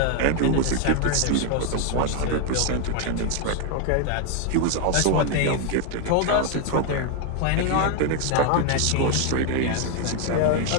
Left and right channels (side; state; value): both; different; correlation 0.01